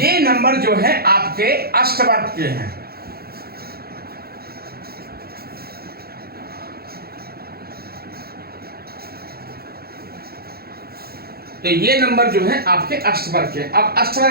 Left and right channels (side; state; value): left; late; 0.45 ms